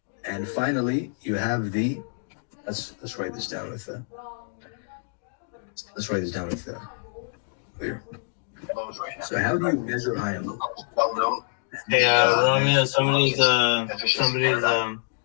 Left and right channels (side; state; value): right; silent; 58 dB below the other